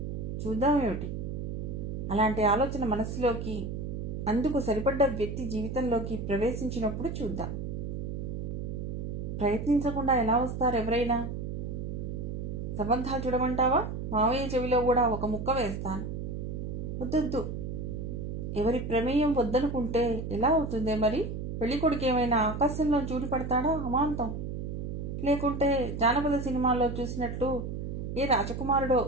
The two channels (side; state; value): right; noise; hum, 5 dB below the sound